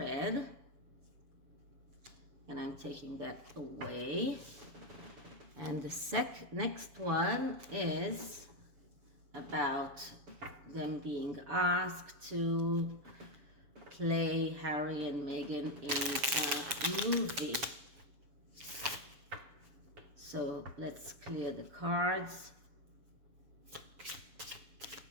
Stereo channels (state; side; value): late; left; 7.2 ms